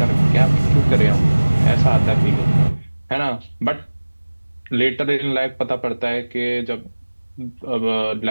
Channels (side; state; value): both; inverted; correlation -1.00